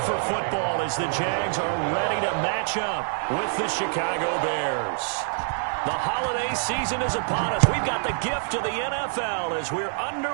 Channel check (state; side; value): silent; left; digital silence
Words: for football as the Jags are ready to match up with the Chicago Bears. The holiday season is upon us. We've got the gift of the NFL as we're